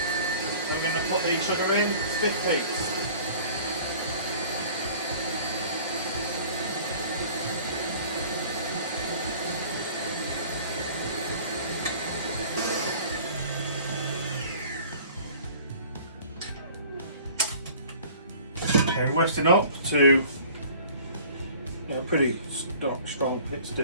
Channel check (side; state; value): both; inverted; correlation -0.48